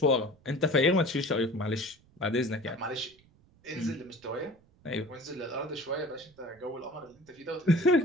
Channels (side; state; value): right; noise; rumble, 30 dB below the sound